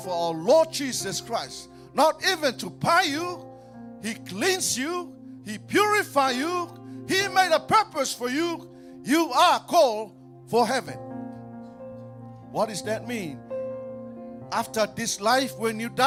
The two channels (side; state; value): both; identical; correlation 1.00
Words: our Lord Jesus Christ. Not even to buy you, He cleansed you, He purified you, He made a purpose for you. You are called for heaven. What does that mean? After this life, when you